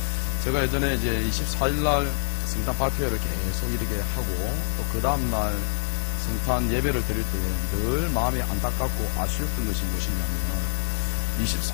제가 예전에 이제 24일날 성탄 발표를 계속 이렇게 하고 또 그 다음날 성탄 예배를 드릴 때 늘 마음이 안타깝고 아쉬웠던 것이 무엇이냐면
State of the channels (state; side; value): silent; right; digital silence